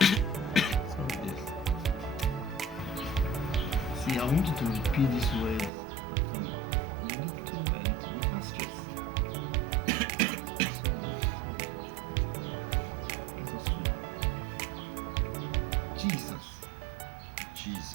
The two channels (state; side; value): drops out; left; at 5.7 s